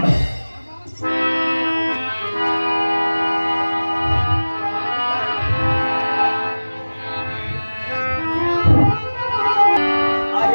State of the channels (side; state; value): both; inverted; correlation -1.00